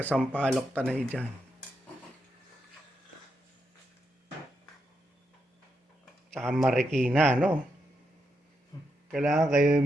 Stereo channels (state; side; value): normal; both; correlation 0.83